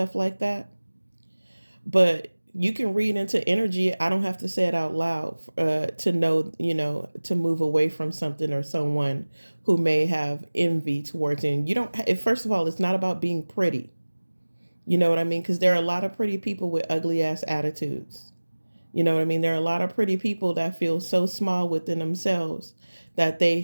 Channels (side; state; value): both; inverted; correlation -1.00